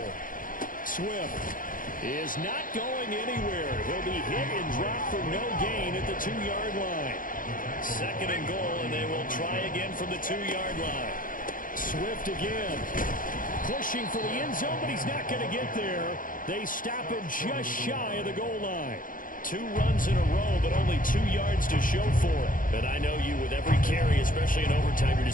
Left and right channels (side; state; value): right; late; 0.40 ms